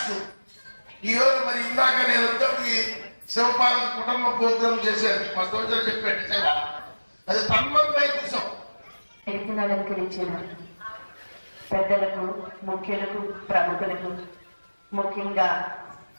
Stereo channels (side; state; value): both; inverted; correlation -1.00